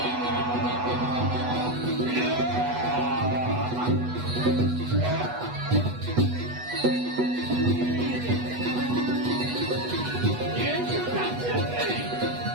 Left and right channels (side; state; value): left; late; 8.1 ms